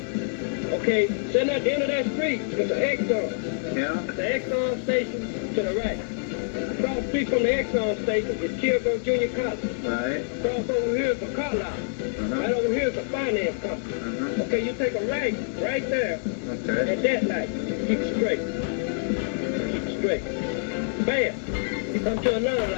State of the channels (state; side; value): silent; right; digital silence